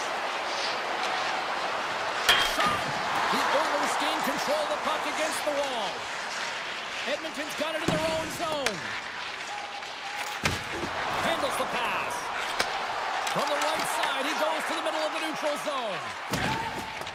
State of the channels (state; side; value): identical; both; correlation 1.00